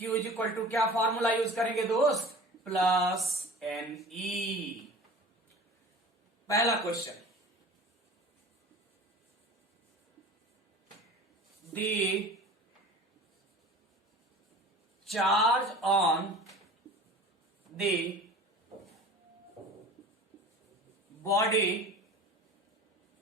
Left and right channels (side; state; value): both; normal; correlation 0.40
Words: इज इक्वल टू क्या फॉर्मूला यूज करेंगे दोस्त, प्लस एन ई। पहला question, the charge on the body